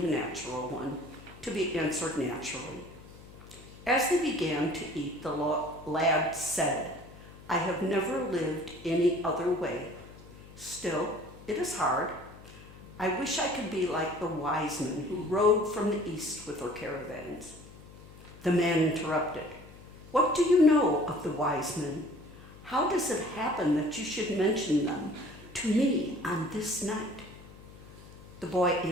a natural one, to be answered naturally. As they began to eat, the lad said, I have never lived any other way. Still, it is hard. I wish I could be like the wise men who rode from the east with their caravans. The man interrupted. What do you know of the wise men? How does it happen that you should mention them to me on this night? The boy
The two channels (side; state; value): left; noise; hum, 19 dB below the sound